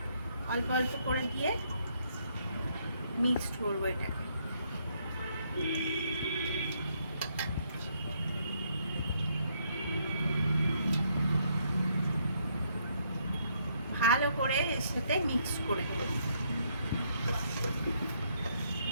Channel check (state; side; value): inverted; both; correlation -0.72